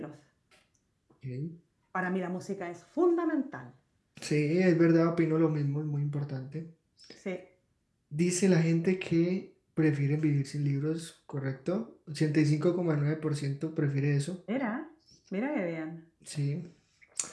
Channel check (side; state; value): both; identical; correlation 1.00